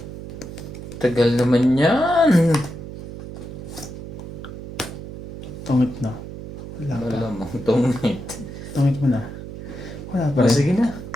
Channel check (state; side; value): noise; right; hum, 11 dB below the sound